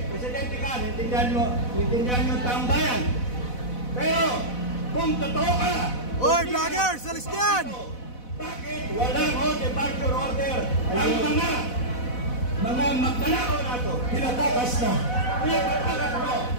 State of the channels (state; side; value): late; right; 4.1 ms